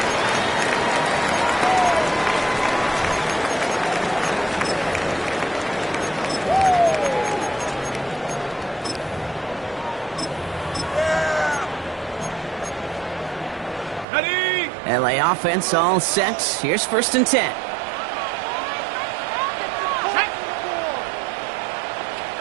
LA offense all set. Here's 1st and 10.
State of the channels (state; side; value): drops out; left; at 14.1 s